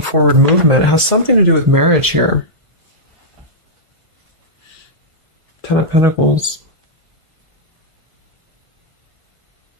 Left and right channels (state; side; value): late; left; 1.5 ms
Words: movement. It has something to do with marriage here. Ten of Pentacles.